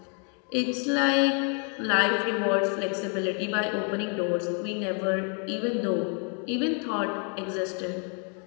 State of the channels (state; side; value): quieter; right; 39.9 dB